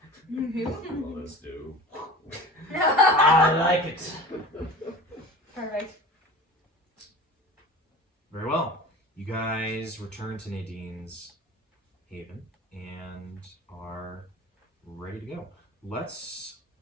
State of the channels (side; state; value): both; normal; correlation 0.37